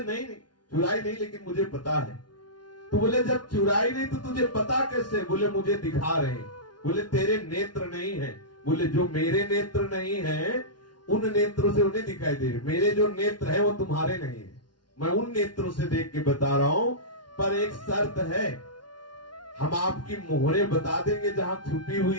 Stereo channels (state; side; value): late; right; 0.70 ms